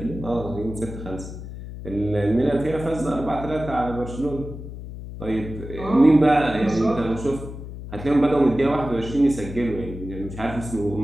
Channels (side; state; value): left; noise; hum, 11 dB below the sound